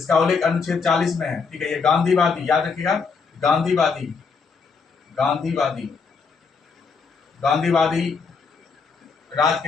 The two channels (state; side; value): quieter; right; 5.2 dB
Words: उल्लेख अनुच्छेद 40 में है। ठीक है, ये गांधीवादी, याद रखिएगा। गांधीवादी गांधीवादी गांधीवादी राज